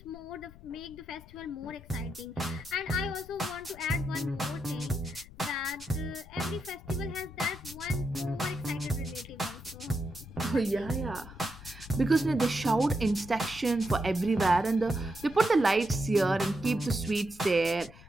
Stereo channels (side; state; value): left; noise; rumble, 19 dB below the sound